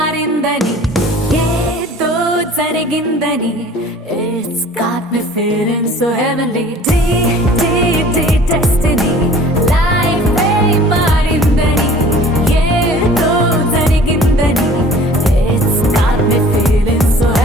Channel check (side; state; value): both; normal; correlation 0.48